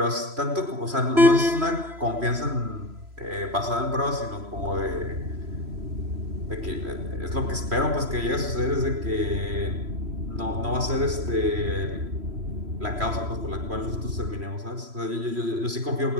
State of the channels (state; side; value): late; left; 3.1 ms